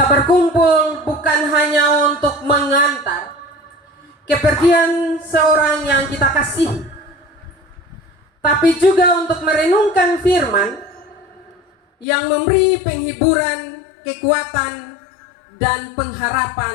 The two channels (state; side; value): drops out; right; at 12.1 s